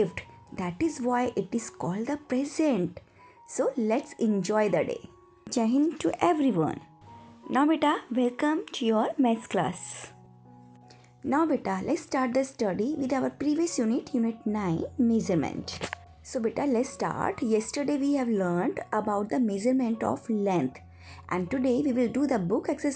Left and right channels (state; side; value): identical; both; correlation 1.00